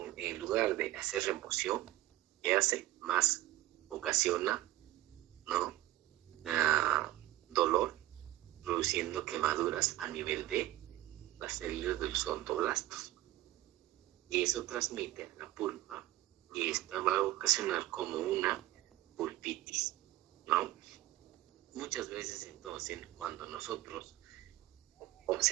en lugar de hacer remoción, ¿qué hace? Más ocasiona, ¿no?, dolor, produciendo quemaduras a nivel de las células de los odontoblastos. Y eso transmite a la pulpa y esta va a ocasionar como una pulpitis, ¿no? Muchas veces entonces cuando nosotros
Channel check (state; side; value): quieter; left; 15.7 dB